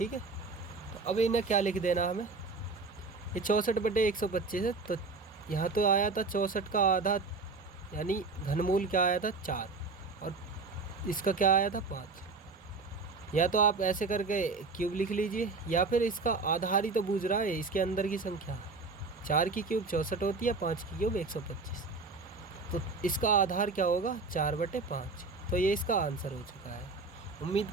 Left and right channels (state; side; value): quieter; left; 4.1 dB